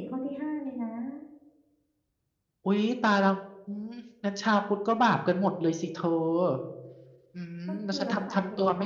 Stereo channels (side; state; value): both; identical; correlation 1.00